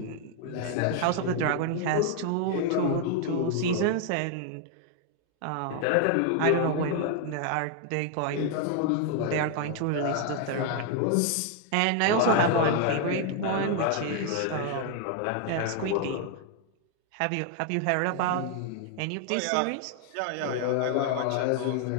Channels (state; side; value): different; both; correlation 0.00